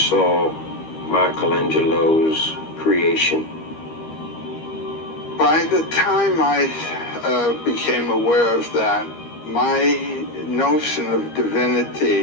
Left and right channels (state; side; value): late; right; 13 ms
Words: Michelangelo's creation? By the time I became aware of that, my notion of